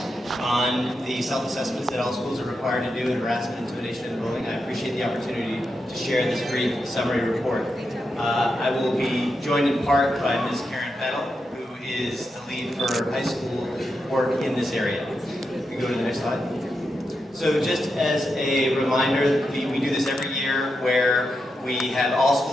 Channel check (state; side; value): normal; both; correlation 0.86